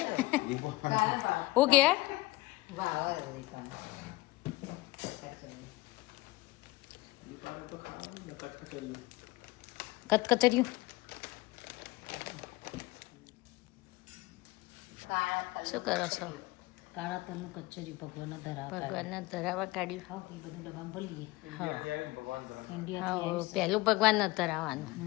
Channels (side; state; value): right; quieter; 20.5 dB